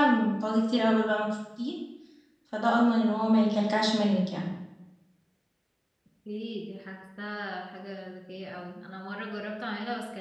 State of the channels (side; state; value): both; identical; correlation 1.00